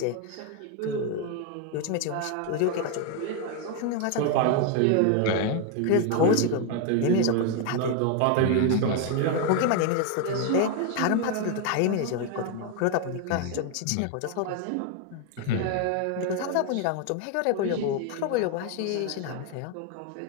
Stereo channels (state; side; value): different; both; correlation 0.01